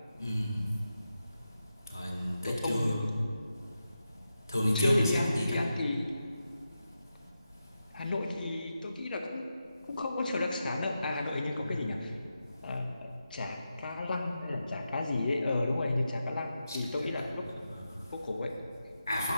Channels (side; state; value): both; inverted; correlation -0.89